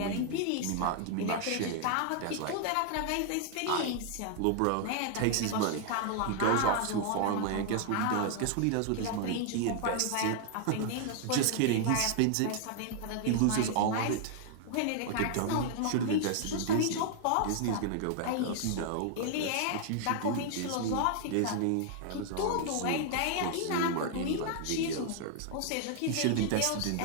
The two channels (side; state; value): both; different; correlation 0.00